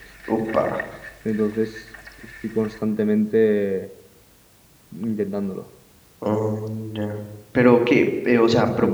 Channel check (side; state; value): both; identical; correlation 1.00